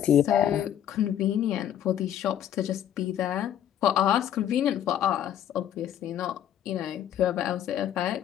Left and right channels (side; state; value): right; quieter; 10.5 dB